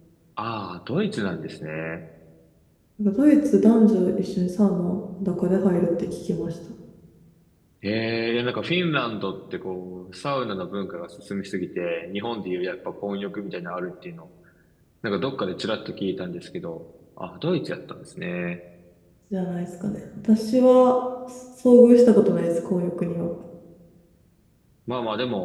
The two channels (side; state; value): both; identical; correlation 1.00